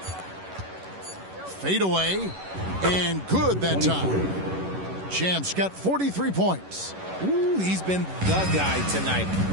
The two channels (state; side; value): late; left; 11 ms